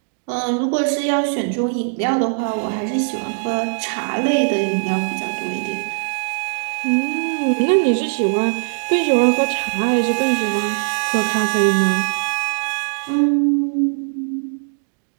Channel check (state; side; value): silent; left; digital silence